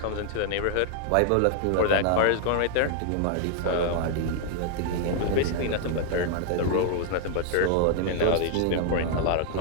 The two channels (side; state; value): both; different; correlation 0.00